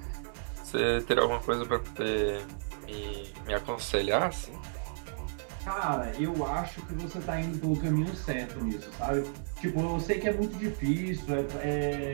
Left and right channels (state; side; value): silent; left; digital silence